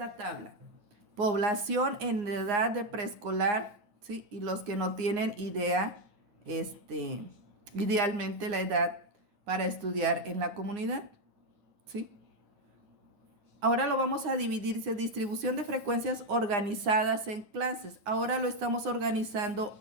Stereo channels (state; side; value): late; left; 9.7 ms